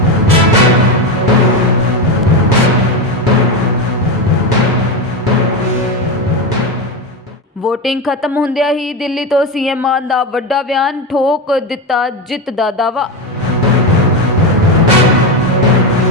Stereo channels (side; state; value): both; normal; correlation 0.15